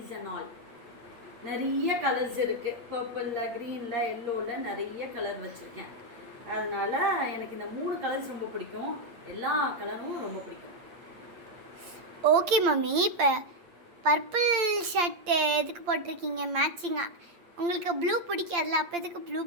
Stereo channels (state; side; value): late; left; 8.7 ms